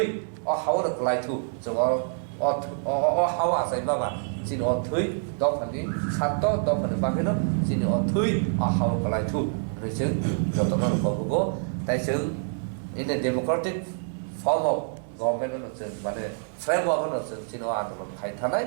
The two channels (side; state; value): left; silent; digital silence